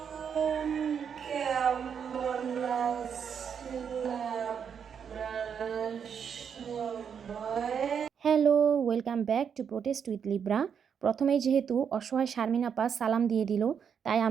Hello, welcome back to protest with Libra. প্রথমেই যেহেতু অসহায় শারমিন আপা সালাম দিয়ে দিল, তাই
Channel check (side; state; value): left; quieter; 7.3 dB